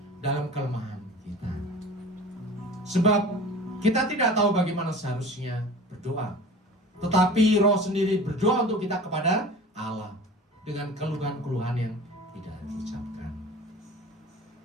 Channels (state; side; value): normal; both; correlation 0.40